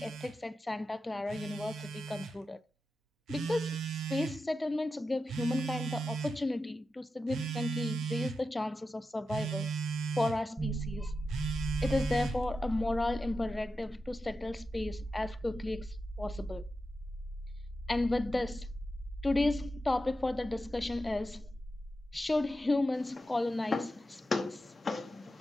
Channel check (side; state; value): both; normal; correlation 0.90